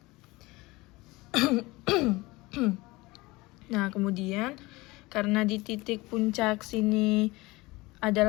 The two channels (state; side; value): quieter; right; 21.8 dB